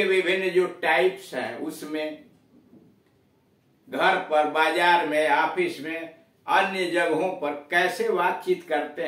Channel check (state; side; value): identical; both; correlation 1.00